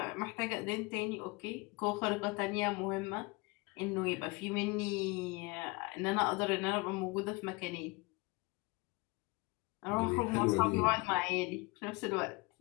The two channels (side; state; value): right; quieter; 26.1 dB